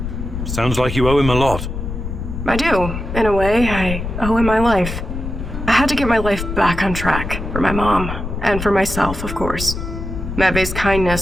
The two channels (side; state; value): left; noise; rumble, 6 dB below the sound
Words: Sounds like you owe him a lot. I do, in a way. I owe him my life. I had to get my life back on track, for my mom, and for myself, of course. Matvey's